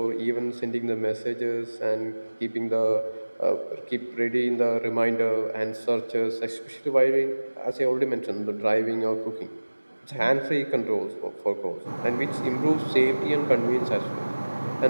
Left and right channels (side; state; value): both; inverted; correlation -1.00